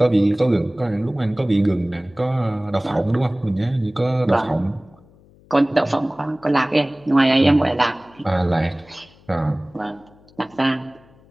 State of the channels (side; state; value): left; noise; hum, 28 dB below the sound